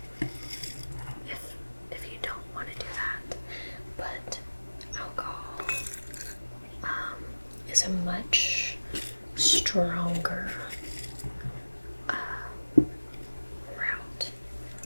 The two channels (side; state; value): both; inverted; correlation -1.00